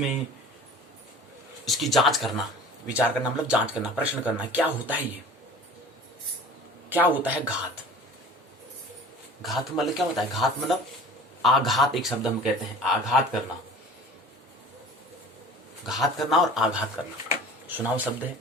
इसकी जांच करना। विचार करना मतलब जांच करना, प्रश्न करना, क्या होता है ये, क्या होता है घात। घात मतलब क्या होता है, घात मतलब आघात, एक शब्द हम कहते हैं आघात करना, घात करना और आघात करना सुनाव शब्द है।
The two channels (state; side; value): normal; both; correlation 0.43